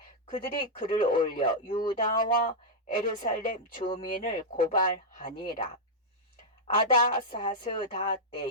그들이 글을 올려 유다와 예루살렘 주민을 고발하니라. 아다사스다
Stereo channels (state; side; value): normal; both; correlation -0.05